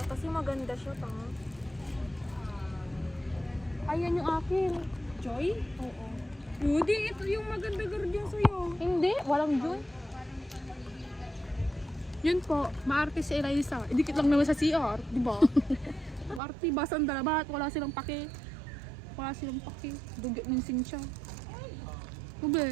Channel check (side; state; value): left; drops out; at 16.4 s